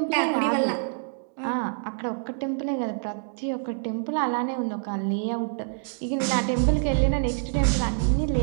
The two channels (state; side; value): silent; left; digital silence